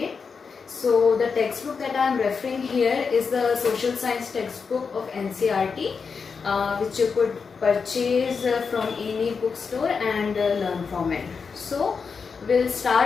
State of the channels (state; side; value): quieter; right; 5.4 dB